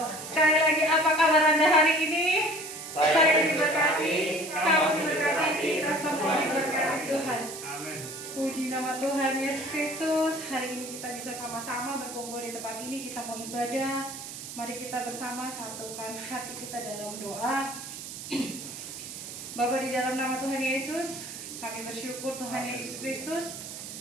sekali lagi apa kabar Anda hari ini? Saya diberkati, kamu diberkati, kita semua diberkati Tuhan. Puji nama Tuhan Yesus Kristus. Hari ini kita bisa sama-sama berkumpul di tempat ini. Kita mau ibadah. Mari kita bersama satukan hati kita dalam doa. Bapa, di dalam nama Tuhan Yesus, kami bersyukur Tuhan Yesus Kristus,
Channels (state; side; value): noise; right; hiss, 10 dB below the sound